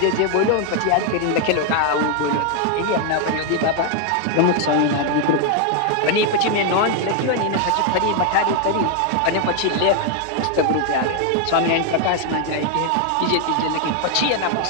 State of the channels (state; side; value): different; both; correlation 0.00